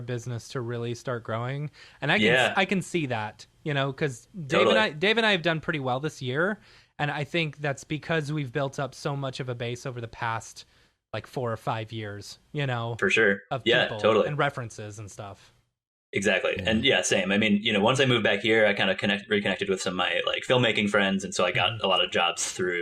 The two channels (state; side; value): identical; both; correlation 1.00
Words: business to really start growing, and I can see that, you know, because Dave and I have done pretty well this year, and I think that's because we've built up so much of a base over the past like 4 or 5 years, you know, for sure, of people totally, and references and stuff. Exactly. And same. I mean, you know, once I moved back here, I kind of reconnected with some of my like filmmaking friends, and so I got a lot of jobs